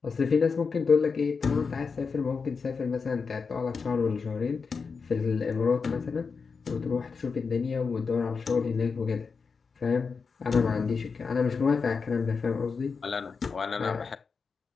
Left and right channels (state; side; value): quieter; right; 5.2 dB